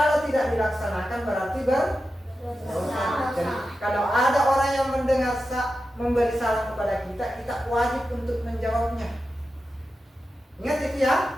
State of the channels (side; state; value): both; normal; correlation 0.91